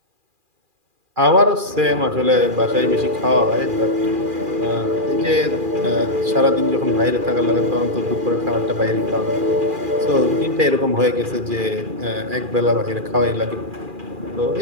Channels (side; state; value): left; late; 2.4 ms